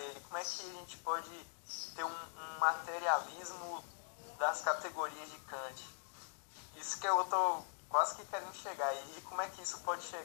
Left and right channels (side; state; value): right; silent; digital silence